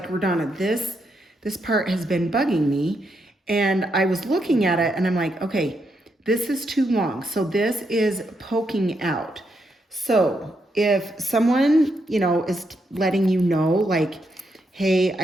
Rodonna, this part has been bugging me. And I was looking at it and I'm like, okay, this is too long. So this is poking out. So if someone, is letting you know, like, hey,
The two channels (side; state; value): both; normal; correlation 0.80